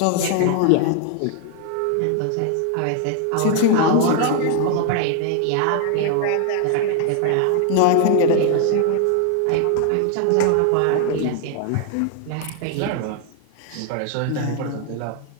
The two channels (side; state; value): both; different; correlation 0.00